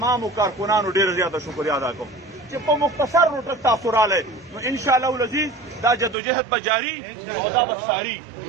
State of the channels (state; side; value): drops out; left; at 6.2 s